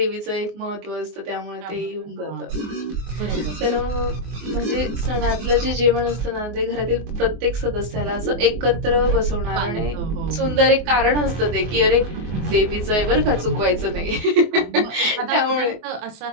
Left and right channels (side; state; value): left; late; 24 ms